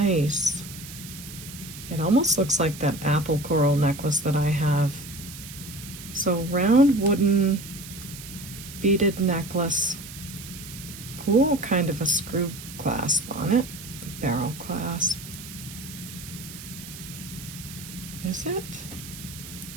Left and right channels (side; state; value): right; noise; hiss, 13 dB below the sound